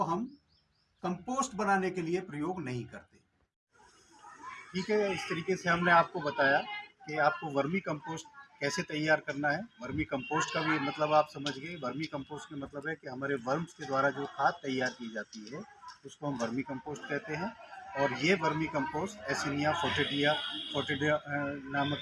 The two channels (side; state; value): both; identical; correlation 1.00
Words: हम कंपोस्ट बनाने के लिए प्रयोग नहीं करते। ठीक है, इस तरीके से हमने आपको बताया कि आपको वर्मी कंपोस्ट कैसे तैयार करना है। वर्मी कंपोस्ट का भी मतलब आप समझ गए। वर्मी कंपोस्ट का मतलब है कि हमारे वर्म्स के द्वारा जो खाद तैयार की जाती है उसको हम वर्मी कंपोस्ट कहते हैं। और ये वर्मी कंपोस्ट एसिनिया फोर्टिडिया